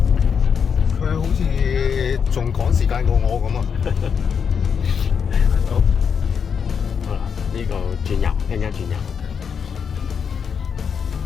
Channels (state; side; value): quieter; right; 6.7 dB